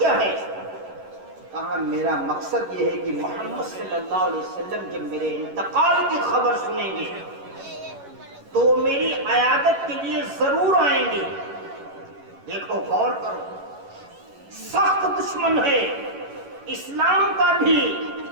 ہے؟ کہا میرا مقصد یہ ہے کہ محمد صلی اللہ علیہ وسلم جب میرے انتقال کی خبر سنیں گے تو میری عیادت کے لیے ضرور آئیں گے۔ دیکھو غور کرو، سخت دشمن ہے اسلام کا بھی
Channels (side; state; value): left; late; 11 ms